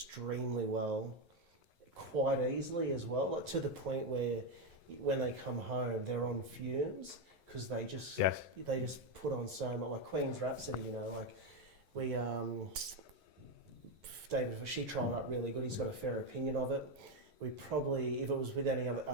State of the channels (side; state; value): left; late; 11 ms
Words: well, quite easily as well, like to the point where when they come home, they're on fumes because they just put on so much, like Queen's Rhapsody, like we, David, she trialled up really good. He's got a fair opinion of it. We probably, if it was with any